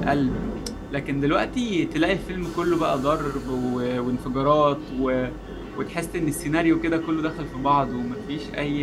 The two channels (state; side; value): identical; both; correlation 1.00